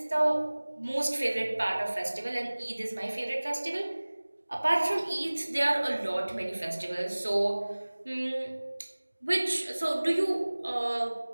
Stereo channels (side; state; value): both; inverted; correlation -1.00